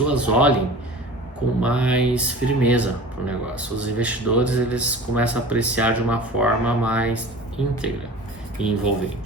olhem com mais firmeza para o negócio. Os investidores eles começam a apreciar de uma forma mais íntegra e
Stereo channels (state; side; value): normal; both; correlation 0.39